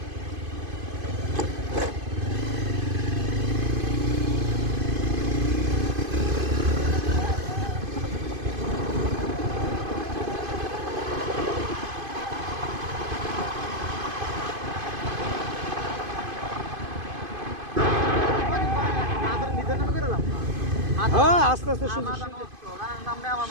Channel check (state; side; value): late; left; 2.5 ms